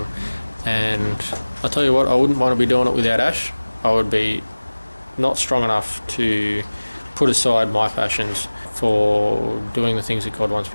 and I tell you what, I wouldn't want to be doing it without Ash. I would be not strong enough to put aside my passions for doing the things that God wants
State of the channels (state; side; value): inverted; both; correlation -1.00